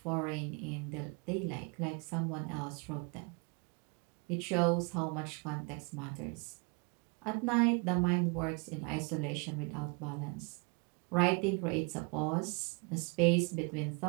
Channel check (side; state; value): left; quieter; 32.5 dB